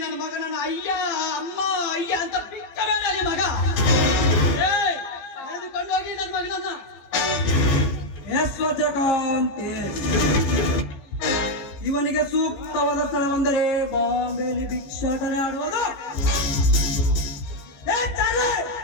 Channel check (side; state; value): right; late; 15 ms